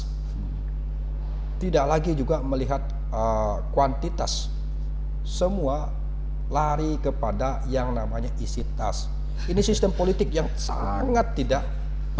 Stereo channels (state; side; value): identical; both; correlation 1.00